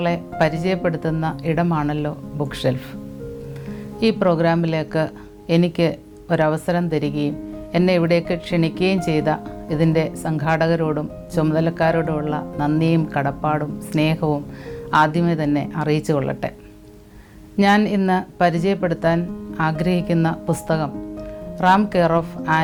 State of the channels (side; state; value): both; identical; correlation 1.00